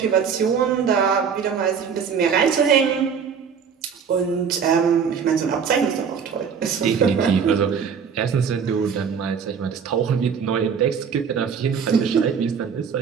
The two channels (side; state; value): left; quieter; 6.7 dB